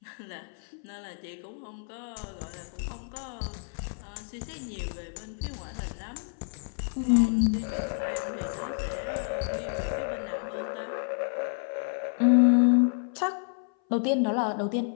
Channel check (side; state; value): right; silent; 57 dB below the other